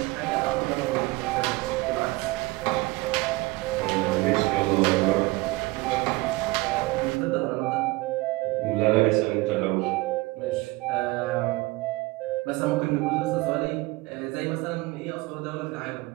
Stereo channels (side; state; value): left; quieter; 22.2 dB